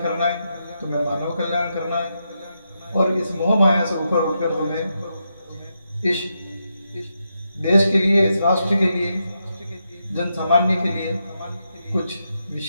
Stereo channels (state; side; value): inverted; both; correlation -0.84